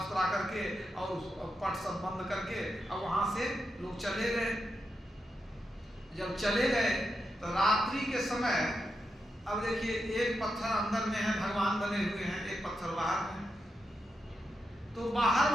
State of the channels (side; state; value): both; normal; correlation 0.86